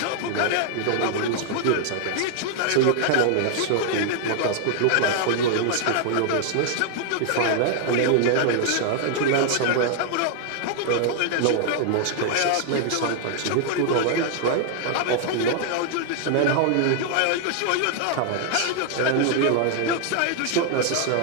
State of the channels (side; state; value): both; different; correlation 0.00